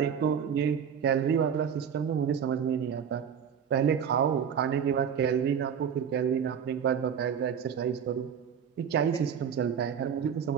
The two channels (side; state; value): left; quieter; 7.7 dB